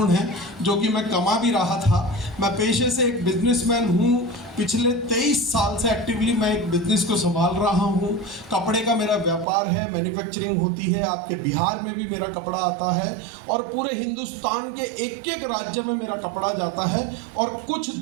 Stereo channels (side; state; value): left; drops out; at 9.5 s